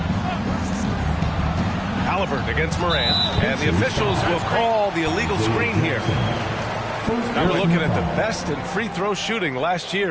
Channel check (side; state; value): both; identical; correlation 1.00